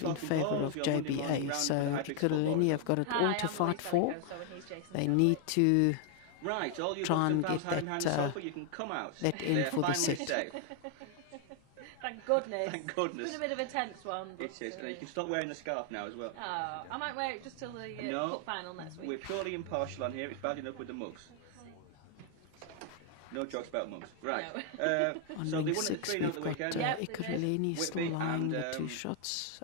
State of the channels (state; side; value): different; both; correlation 0.00